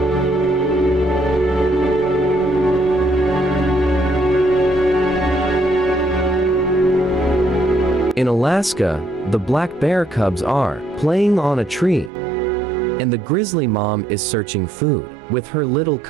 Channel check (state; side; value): drops out; left; at 12.1 s